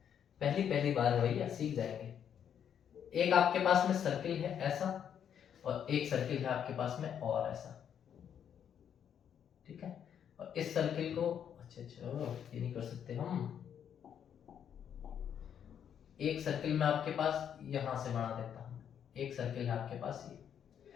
पहली बार है भैया, सीख जाएंगे। एक आपके पास में सर्किल है ऐसा, और एक सर्किल है आपके पास में और ऐसा, ठीक है। और इस सर्किल को अच्छा ये नहीं कर सकते हम। एक सर्किल में आपके पास यहां से बना देता हूं, एक सर्किल है आपके पास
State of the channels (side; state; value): right; quieter; 8.7 dB